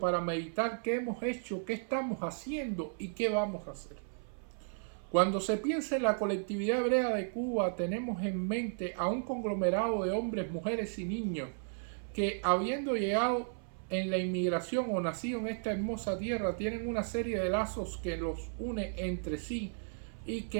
meditar qué hemos hecho, qué estamos haciendo y qué vamos a hacer. Cuando se piensa en la colectividad hebrea de Cuba, tenemos en mente a un conglomerado de hombres, mujeres y niños que, habiendo llegado en la inmigración o nacido en esta hermosa tierra, tienen una serie de lazos que los une entre sí y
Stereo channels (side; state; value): left; silent; 55 dB below the other